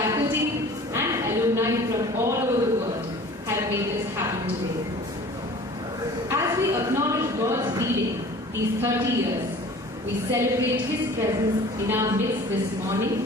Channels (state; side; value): normal; both; correlation 0.45